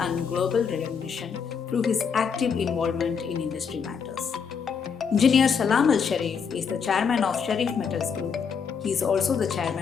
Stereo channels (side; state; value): right; quieter; 6.4 dB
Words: and global recognition through his active involvement in industry matters. Engineer Salam Al Sharif is the chairman of Sharif Metals Group. He is also the